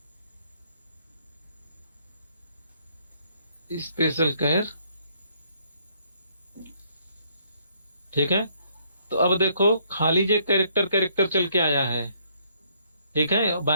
स्पेशल केयर, ठीक है। तो अब देखो खाली जो कैरेक्टर कैरेक्टर चल के आया है, ठीक है,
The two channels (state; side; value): inverted; both; correlation -0.68